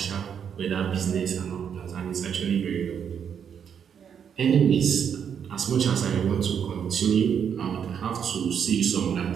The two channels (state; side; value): quieter; left; 7.8 dB